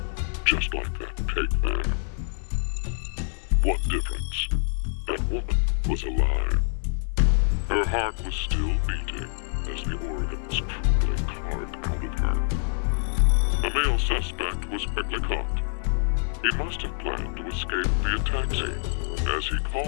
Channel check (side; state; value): right; silent; 61 dB below the other